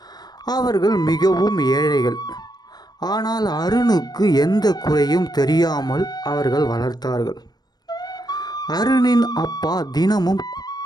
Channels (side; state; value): right; late; 0.19 ms